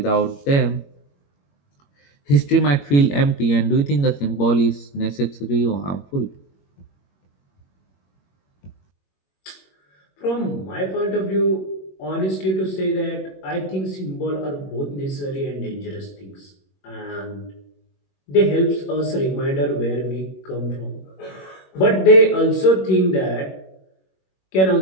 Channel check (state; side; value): late; right; 21 ms